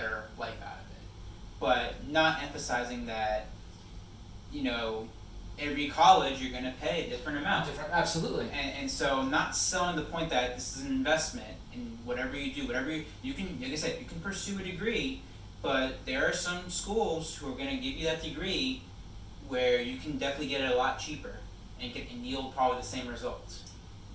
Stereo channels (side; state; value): both; identical; correlation 1.00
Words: life out of it, but not emphasizing that, you know, every college you're going to pay a different amount. Absolutely. And so not selling the point that this is an investment in whatever you do, whatever you can, like I said, you can pursue a degree, but there are some schools who are going to give you that degree where you can definitely get it a lot cheaper and yield probably the same results.